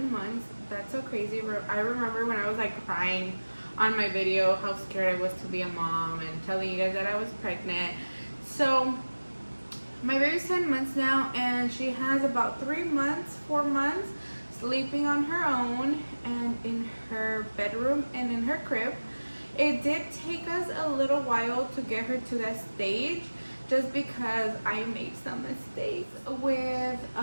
months. That's so crazy. I remember when I was like crying on my video how scared I was to be a mom and telling you guys that I was pregnant. So my baby's 10 months now, and she has about 4 months sleeping on her own and in her bedroom and in her crib. It did take us a little while to get her to that stage, just because I made some mistakes with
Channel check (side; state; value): both; inverted; correlation -1.00